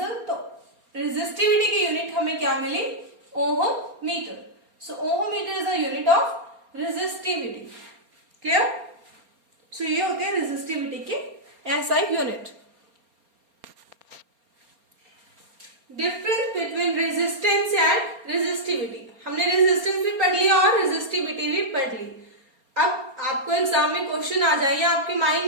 तो रेजिस्टिविटी की यूनिट हमें क्या मिली, ohm metre. So ohm metre is the unit of resistivity, clear. So ये होते हैं रेजिस्टिविटी के SI unit. Difference between resistance and resistivity, हमने रेजिस्टेंस भी पढ़ लिया और रेजिस्टिविटी भी पढ़ ली। अब आपको एग्जाम में क्वेश्चन आ जाए या आपके माइंड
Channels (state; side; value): late; left; 4.3 ms